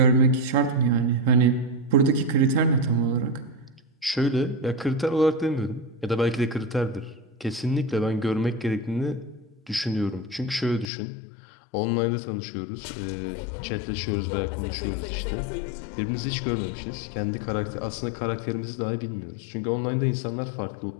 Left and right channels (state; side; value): drops out; right; at 10.9 s